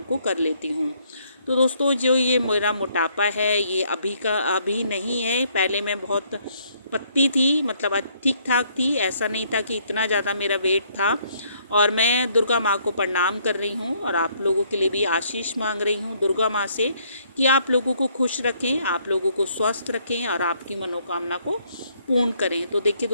को कर लेती हूँ। तो दोस्तों जो ये मेरा मोटापा है ये अभी नहीं है। पहले मैं बहुत पतली थी, मतलब ठीक ठाक थी, ऐसा नहीं था कि इतना ज़्यादा मेरा वेट था। और मैं दुर्गा माँ को प्रणाम कर रही हूँ और आप लोगों के लिए भी आशीष मांग रही हूँ दुर्गा माँ से कि आप लोगों को खुश रखें, आप लोगों को स्वस्थ रखें और आपकी मनोकामना को पूर्ण करें। तो देखिए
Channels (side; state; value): both; inverted; correlation -0.67